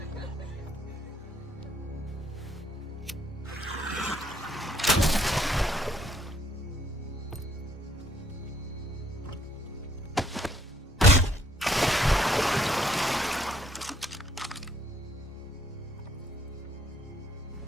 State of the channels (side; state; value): both; normal; correlation 0.66